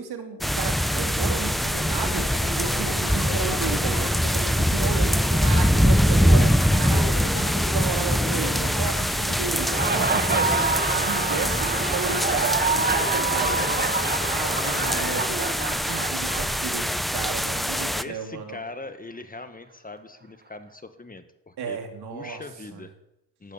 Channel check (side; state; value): both; normal; correlation 0.67